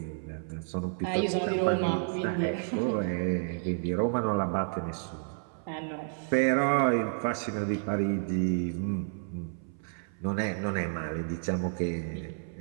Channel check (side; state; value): left; silent; 57 dB below the other